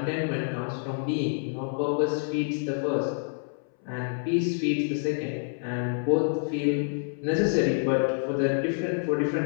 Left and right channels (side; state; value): right; silent; 60 dB below the other